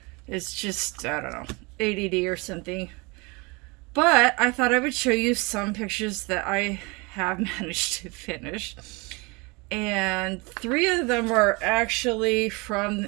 It's just, I don't know, ADD or something. But I thought I would show you some pictures that I have managed to finish. And three of them are actually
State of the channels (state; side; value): quieter; left; 27.5 dB